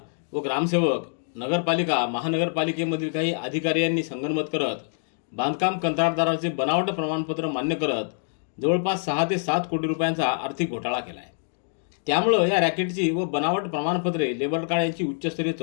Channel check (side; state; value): right; silent; digital silence